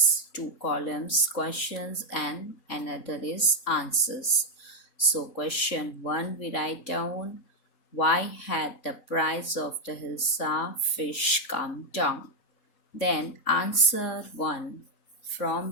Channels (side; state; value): right; late; 3.6 ms